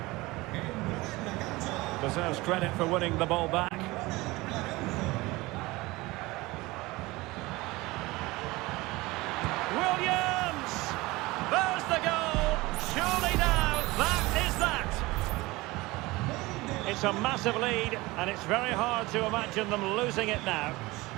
Deserves credit for winning the ball back. Williams! There's the goal! Surely now, that is that! It's a massive lead, and it's very hard to imagine them losing it now.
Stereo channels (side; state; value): left; quieter; 21.2 dB